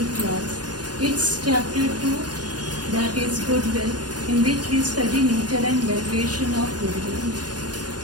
class. It's chapter 2, that is goodwill, in which we study nature and valuation of goodwill.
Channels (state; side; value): late; left; 0.69 ms